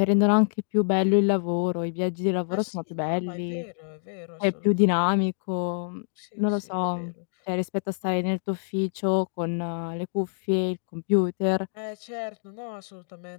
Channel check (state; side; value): silent; right; digital silence